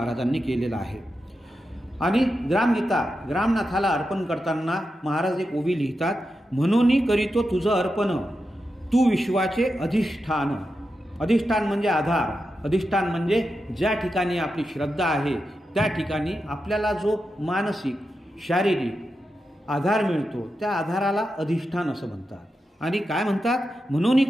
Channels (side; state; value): both; normal; correlation 0.89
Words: केलेलं आहे. आणि ग्रामगीता ग्रामनाथाला अर्पण करताना महाराज एक ओवी लिहितात, म्हणून करीतो तुझं अर्पण, तू विश्वाचे अधिष्ठान. अधिष्ठान म्हणजे आधार, अधिष्ठान म्हणजे ज्या ठिकाणी आपली श्रद्धा आहे त्या ठिकाणी आपल्याला जो मानसिक शारीरिक आधार मिळतो त्या आधाराला अधिष्ठान असं म्हणतात. आणि काय म्हणतात, म्हणून